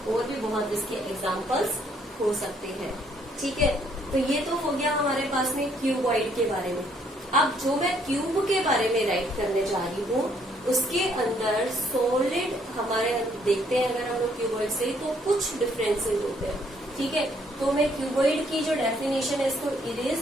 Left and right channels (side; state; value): both; normal; correlation 0.67